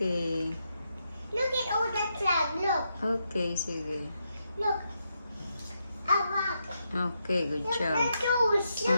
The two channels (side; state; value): both; inverted; correlation -0.82